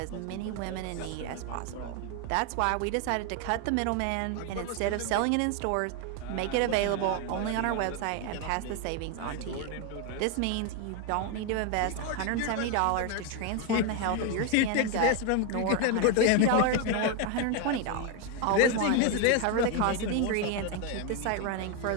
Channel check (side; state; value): both; different; correlation 0.01